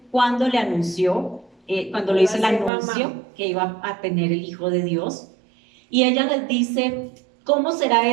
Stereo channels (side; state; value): left; drops out; at 2.7 s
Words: cuando le anunció, cuando le hizo el anuncio que iba a tener el Hijo de Dios. Y ella les dice: ¿cómo será